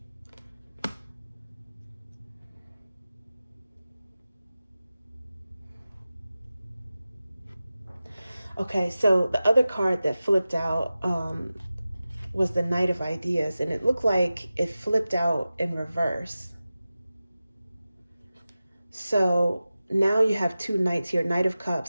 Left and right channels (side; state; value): both; inverted; correlation -0.95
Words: Okay, so the other card that flipped out was the Knight of Ideas, and it looked like it flipped out in reverse. So now you have two Knights here, Knight of